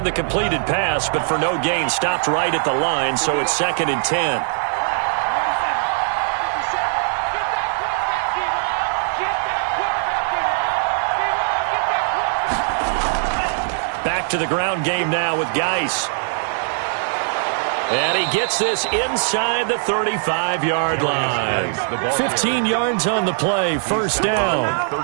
the completed pass, but for no gain, stopped right at the line, so it's 2nd and 10. Back to the ground game now with Geis. And he gets this inside the 35-yard line. 15 yards on the play, first down.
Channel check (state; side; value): silent; left; 63 dB below the other